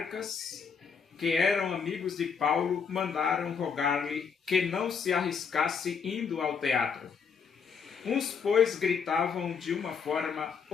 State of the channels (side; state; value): right; quieter; 6.2 dB